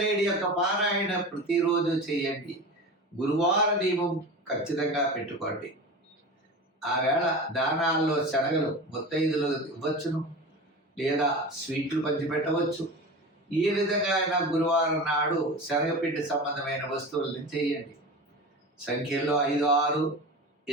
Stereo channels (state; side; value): normal; both; correlation 0.30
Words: యొక్క పారాయణ ప్రతిరోజు చేయండి. గురువార నియమం ఖచ్చితంగా పెట్టుకోండి. ఆ వేళ దానాల్లో శనగలు ముత్తైదులు ఇవ్వచ్చును, లేదా స్వీట్లు పంచిపెట్టవచ్చు. ఏ విధంగా అయినా గురువారం నాడు శనగపిండి సంబంధమైన వస్తువులను చేయండి. సంఖ్యల్లో 5, 6,